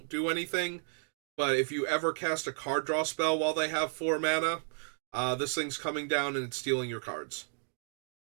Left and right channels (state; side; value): silent; left; 56 dB below the other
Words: do anything, but if you ever cast a card draw spell while they have 4 mana, this thing's coming down and it's stealing your cards.